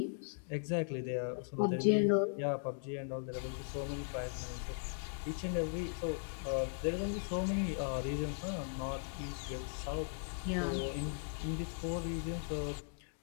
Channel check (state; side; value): silent; right; digital silence